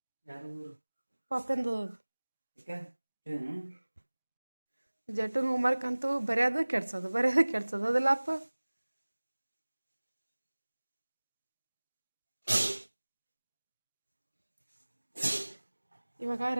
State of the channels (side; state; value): both; inverted; correlation -1.00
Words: ಪಾಪಂದು ಜಟನ್ ಹೋಮ್ವರ್ಕ್ ಅಂತೂ ಬರೆಯೋದು ಕೆಡ್ಸೋದು ಅದಲ್ಲಪ್ಪ. ಇವಾಗ